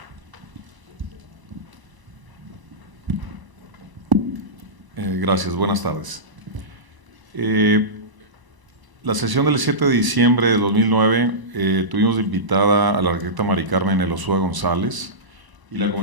Gracias, buenas tardes. La sesión del 7 de diciembre de 2009 tuvimos invitada a la arquitecta Mari Carmen Elosúa González, y la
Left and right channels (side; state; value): left; late; 1.0 ms